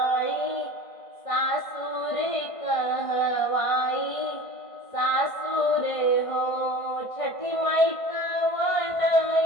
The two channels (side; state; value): right; late; 1.5 ms